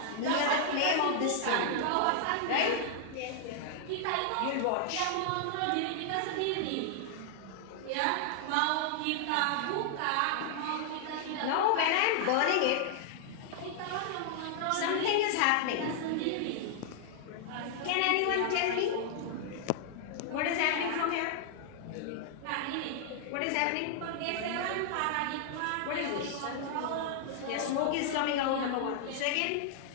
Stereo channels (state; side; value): different; both; correlation 0.00